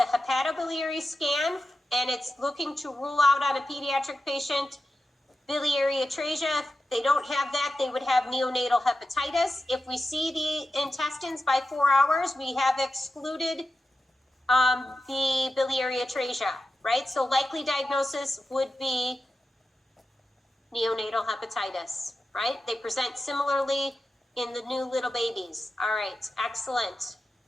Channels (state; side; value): normal; both; correlation 0.92